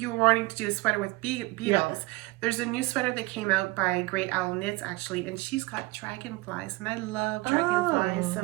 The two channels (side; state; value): left; quieter; 22.4 dB